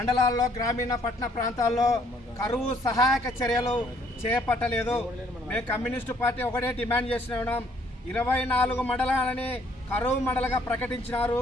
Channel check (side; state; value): both; normal; correlation 0.65